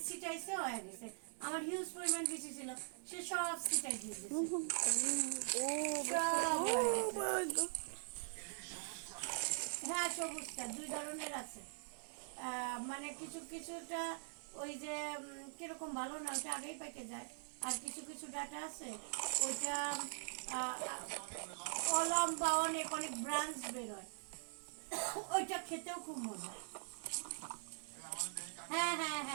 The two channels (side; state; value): left; silent; digital silence